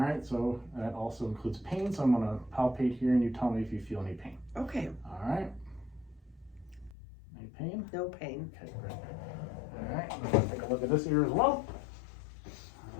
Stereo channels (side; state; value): right; drops out; at 7.0 s